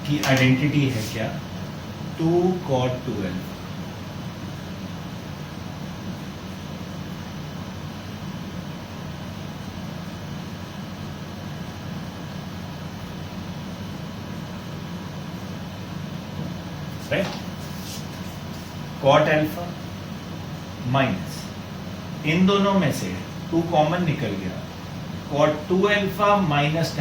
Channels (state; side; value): identical; both; correlation 1.00